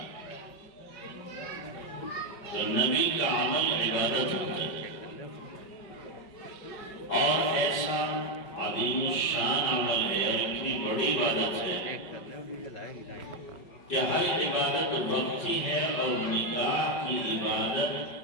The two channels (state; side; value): late; right; 5.2 ms